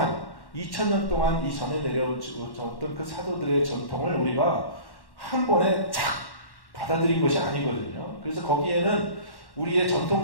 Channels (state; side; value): late; right; 1.1 ms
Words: 2000년 동안 이 전에 내려졌던 그 사도들의 전통을 우리가 한 번에 착 받아들인 것이 아니거든요. 그래서 거기에는 우리의